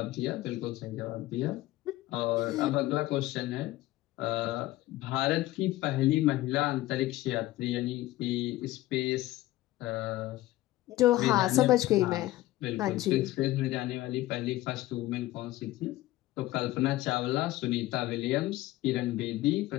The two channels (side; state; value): right; quieter; 16.8 dB